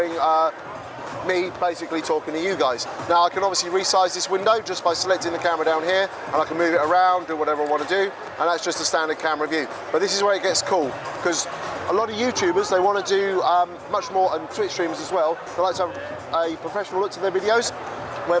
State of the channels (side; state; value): both; identical; correlation 1.00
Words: me basically talking to you guys. Now I can obviously resize this window just by selecting the camera down here, and I can move it around, do whatever I want to do, and that's just a standard camera view. But this is where it gets cool, because a lot of YouTubers, they want to do much more, and Twitch streamers as well, they like to have a professional look to their videos,